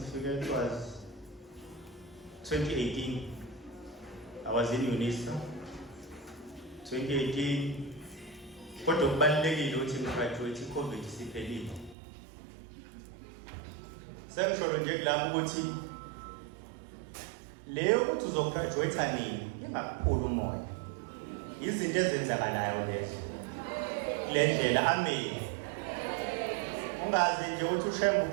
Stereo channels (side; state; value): left; drops out; at 12.0 s